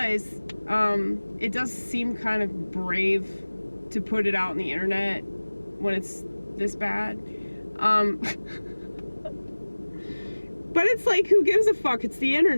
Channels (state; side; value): inverted; both; correlation -1.00